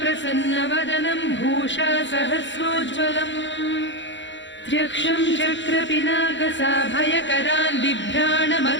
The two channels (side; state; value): right; late; 0.54 ms